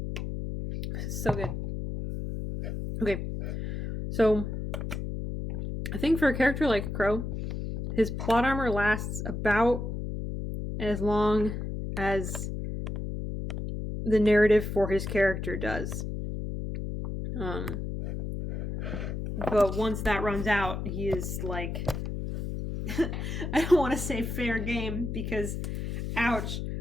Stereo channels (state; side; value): noise; left; hum, 4 dB below the sound